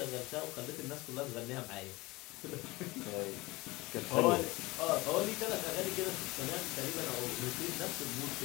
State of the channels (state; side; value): quieter; right; 21.8 dB